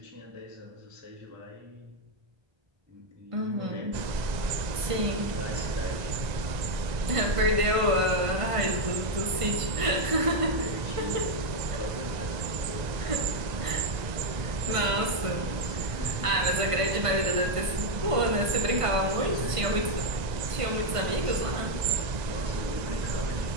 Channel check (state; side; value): late; left; 1.5 ms